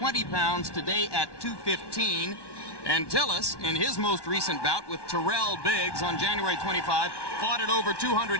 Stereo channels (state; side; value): late; right; 1.1 ms